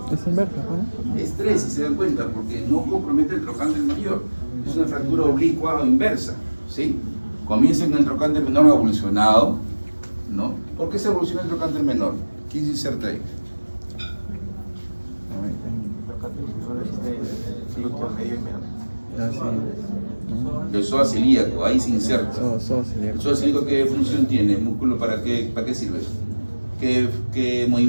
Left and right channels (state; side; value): inverted; both; correlation -1.00